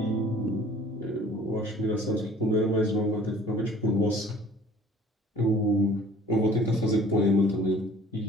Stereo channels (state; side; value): normal; both; correlation 0.51